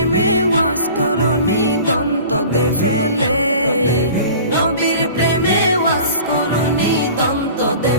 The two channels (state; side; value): inverted; both; correlation -0.42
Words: ওয়াজ করনি দন্ত দে ফেলে, নবীর প্রেমে ওয়াজ করনি দন্ত দে